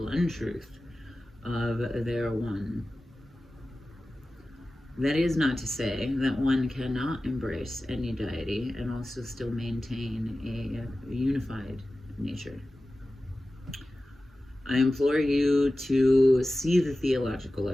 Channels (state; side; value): normal; both; correlation 0.95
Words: untruth of their one. That is not to say that one cannot embrace any deity and also still maintain a unified nature. I implore you to see the theological